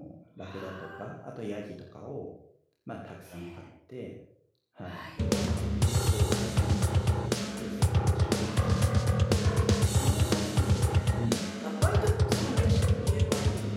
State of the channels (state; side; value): identical; both; correlation 1.00